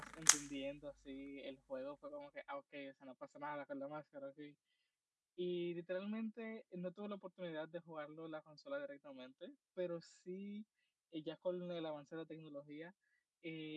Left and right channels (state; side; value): identical; both; correlation 1.00